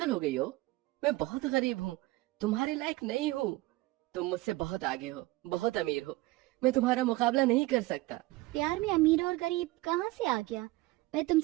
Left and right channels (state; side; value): quieter; left; 19.9 dB